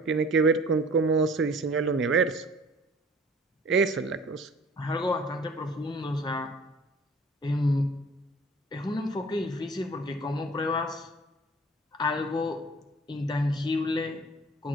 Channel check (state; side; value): normal; both; correlation 0.49